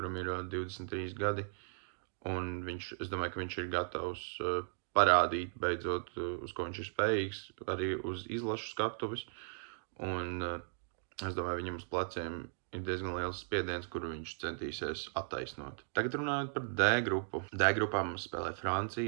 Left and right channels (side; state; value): left; silent; digital silence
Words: ir 23 gadi, un es domāju, ka viņš ir gatavs parādīt beidzot, uz ko viņš ir spējīgs, arī uz izlašu skatuves, un es domāju, viņam uz pleciem ir diezgan liels spiediens, kuru viņš centīsies attaisnot. Tagad runājot par D grupu. D grupā mums spēlē